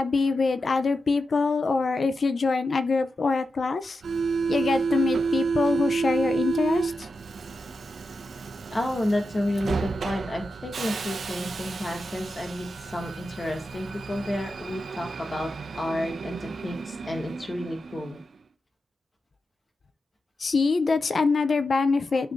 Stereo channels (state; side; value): normal; both; correlation 0.89